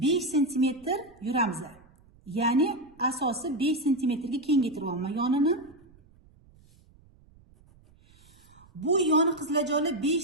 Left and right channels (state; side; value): noise; right; rumble, 28 dB below the sound